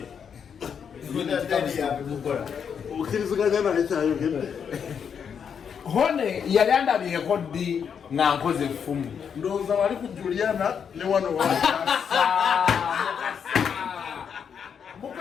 Linda Deno ya bukora. Ukiriziganya na echayo gende. Hone yali andabiyeko ddi nga nkoze effumu. Ndowooza wali ku Juliana ne wano wa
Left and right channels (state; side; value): quieter; right; 7.2 dB